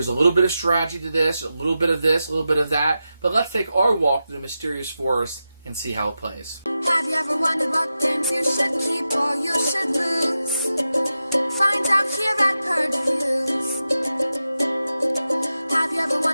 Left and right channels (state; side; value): inverted; both; correlation -0.91